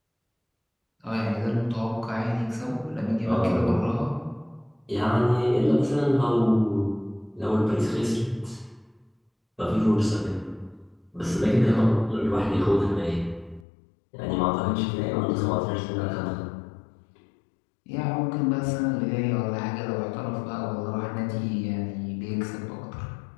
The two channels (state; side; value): drops out; right; at 13.7 s